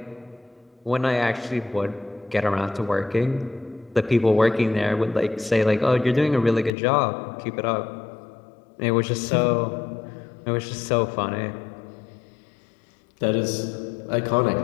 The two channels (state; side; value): drops out; right; at 6.7 s